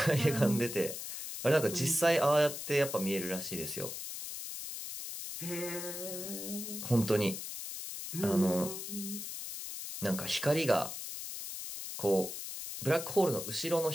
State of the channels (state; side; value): noise; left; hiss, 7 dB below the sound